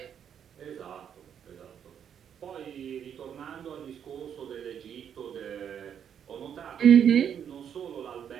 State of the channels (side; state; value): left; quieter; 8.5 dB